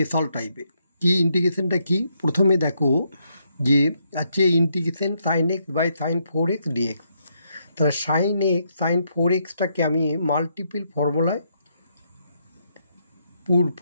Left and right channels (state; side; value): inverted; both; correlation -0.77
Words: টাইপের। কি ইন্টিগ্রেশনটা কি? প্রথমে দেখো যে আছে integration sine x by sine 4x dx. তাহলে সাইন এক্স সাইন 4xটাকে আমি মাল্টিপল